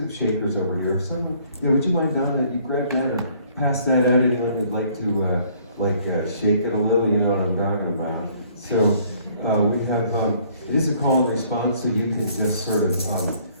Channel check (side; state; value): both; inverted; correlation -0.61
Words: of shakers over here. Someone, would you mind, Donna, you grab that and pass that out? Anyone would like to shake it a little? You know what I'm talking about. So we have, it is a call and response, so you can just sort of